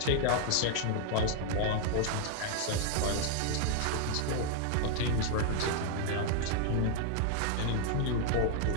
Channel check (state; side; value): different; both; correlation 0.00